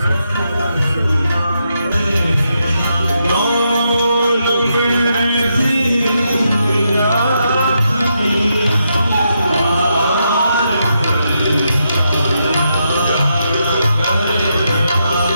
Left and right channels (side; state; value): both; inverted; correlation -0.82